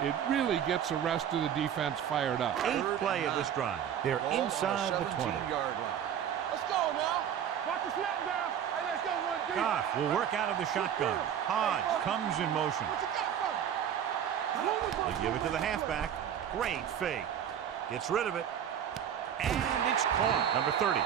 really gets the rest of the defense fired up. 8th play of this drive. They're inside the 20. Let's go now. Watch the snap down. Hey, let's go one deep. Goff will work out of the shotgun. Hodge comes in motion. What you got for me? They give it to the halfback. Great fake. Gets rid of it. And it's caught. Number 30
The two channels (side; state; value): left; quieter; 9.3 dB